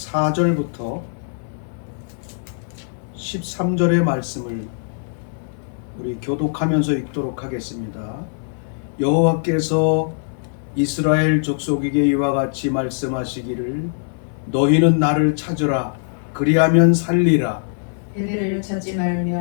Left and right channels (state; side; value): silent; right; 63 dB below the other